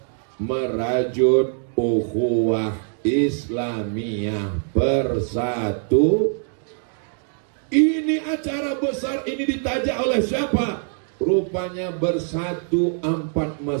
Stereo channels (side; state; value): left; silent; 59 dB below the other